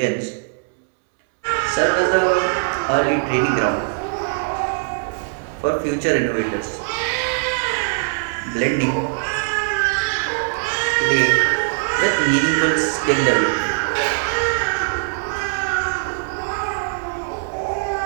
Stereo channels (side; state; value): left; silent; digital silence